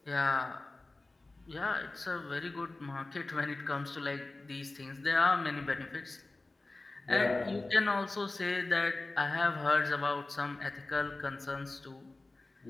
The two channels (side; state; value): right; quieter; 3.1 dB